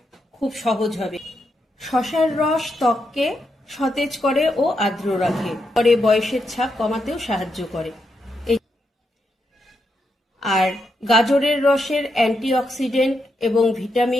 খুব সহজ হবে। শসার রস ত্বককে সতেজ করে ও আর্দ্র রাখে, পরে বয়সের ছাপ কমাতেও সাহায্য করে। আর গাজরের রসের অ্যান্টিঅক্সিডেন্ট এবং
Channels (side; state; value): both; normal; correlation 0.82